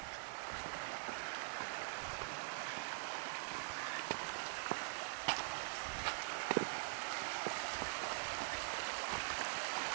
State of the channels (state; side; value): silent; left; digital silence